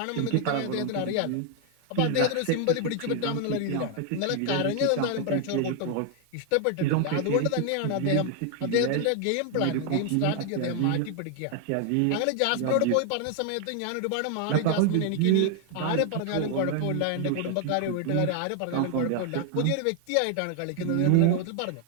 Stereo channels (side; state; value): both; different; correlation 0.00